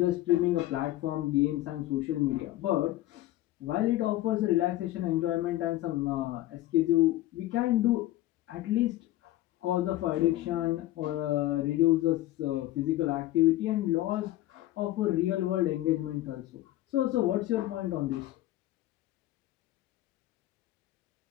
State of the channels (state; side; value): quieter; right; 15.6 dB